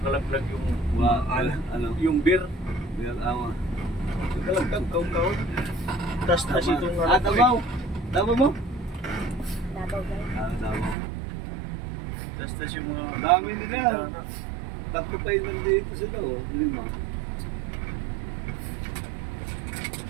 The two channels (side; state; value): left; drops out; at 11.0 s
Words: yung yung beer. Beer, awa. Pagkalaglag, kaon-kaon. Tas itong Davao? Davao mo? Davao guys. Davao. Tas yung mga... Dami nila. Tatlo pa yun nandito sila, oh. 5.